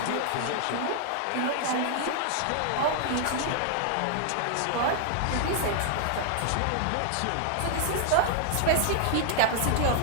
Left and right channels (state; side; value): different; both; correlation 0.00